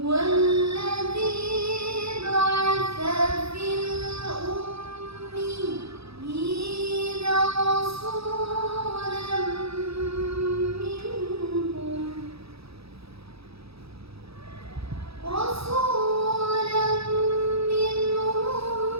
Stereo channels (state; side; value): late; left; 0.77 ms